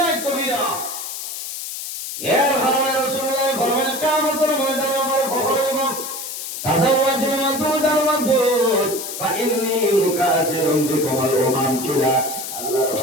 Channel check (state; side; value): noise; left; hiss, 7 dB below the sound